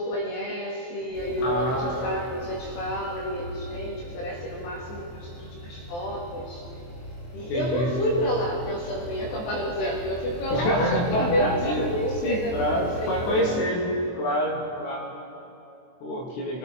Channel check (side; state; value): right; late; 23 ms